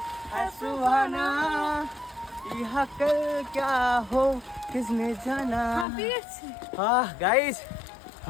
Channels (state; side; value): drops out; right; at 5.9 s